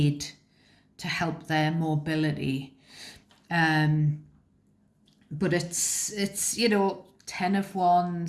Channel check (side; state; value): both; identical; correlation 1.00